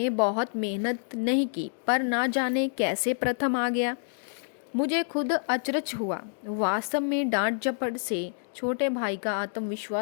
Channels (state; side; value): silent; right; digital silence